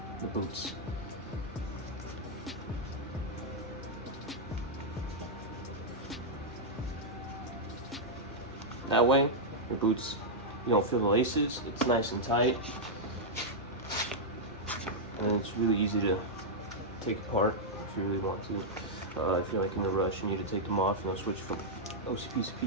the boots. That way your boots, you don't feel the laces, it's nice and tight. and it's really easy to take apart if you really want to. If you're like in a rush, you need to take them off, switch from OCPs to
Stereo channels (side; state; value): both; normal; correlation -0.06